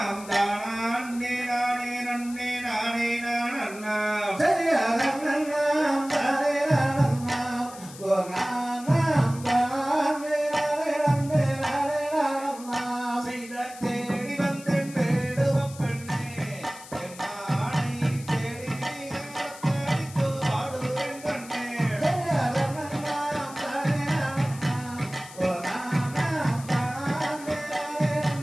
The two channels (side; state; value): left; noise; hiss, 17 dB below the sound